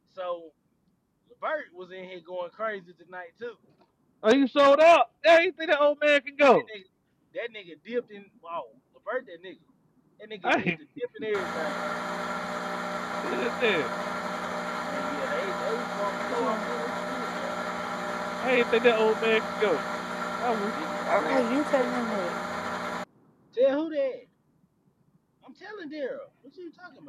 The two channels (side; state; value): both; identical; correlation 1.00